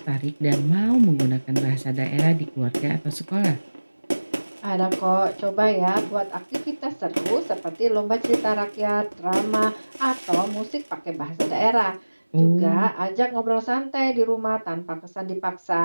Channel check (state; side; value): inverted; both; correlation -1.00